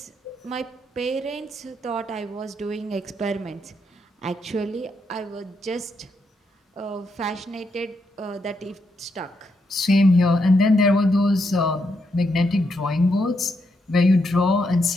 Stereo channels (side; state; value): both; normal; correlation 0.80